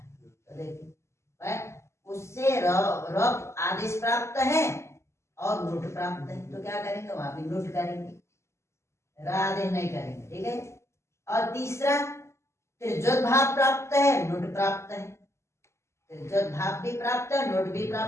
तो देखिए उससे रब आदेश प्राप्त है और नुट प्राप्त है, तो क्या करेंगे? वहां भी नुट करेंगे, आदेश नहीं करेंगे, ठीक है। और तीसरा त्रिजोत भाव प्राप्त है, नुट प्राप्त है, त्रिजोत भाव भी प्राप्त है, नुट भी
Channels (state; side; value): late; right; 0.13 ms